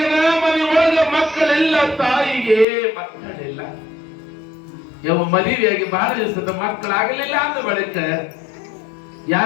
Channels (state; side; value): drops out; right; at 2.7 s